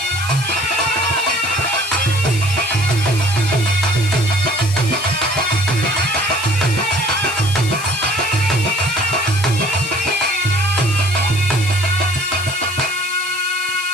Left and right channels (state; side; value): noise; left; hiss, 10 dB below the sound